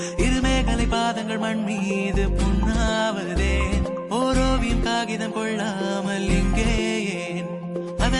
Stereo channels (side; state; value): both; identical; correlation 1.00